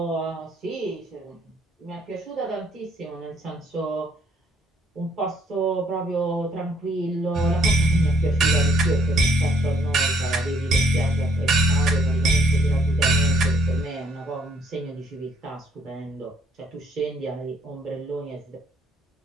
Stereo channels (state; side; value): normal; both; correlation 0.65